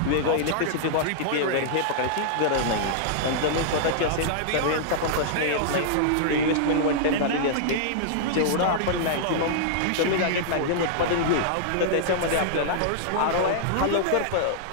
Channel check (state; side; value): different; both; correlation -0.02